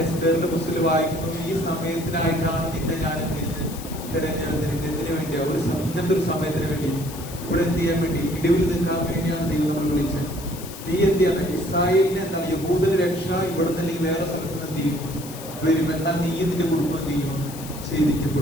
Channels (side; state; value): left; noise; hiss, 14 dB below the sound